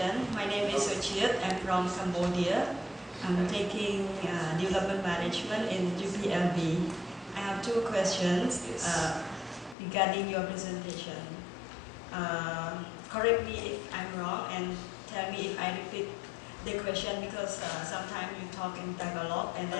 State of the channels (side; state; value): right; drops out; at 9.8 s